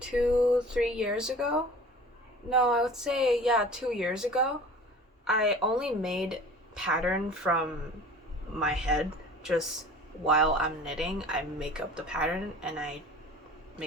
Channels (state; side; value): normal; both; correlation 0.43